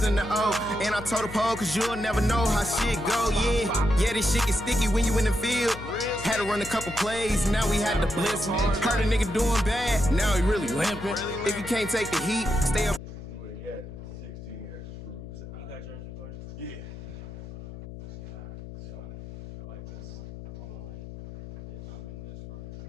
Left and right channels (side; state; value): left; noise; hum, 11 dB below the sound